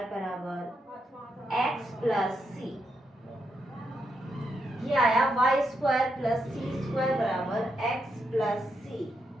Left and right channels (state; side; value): normal; both; correlation 0.82